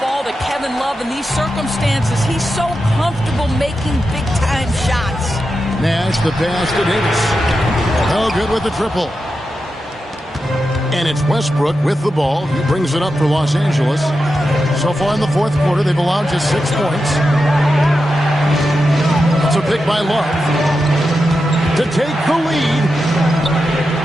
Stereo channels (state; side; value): normal; both; correlation 0.89